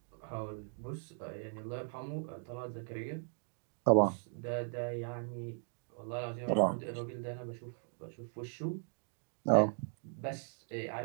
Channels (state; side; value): silent; left; 52 dB below the other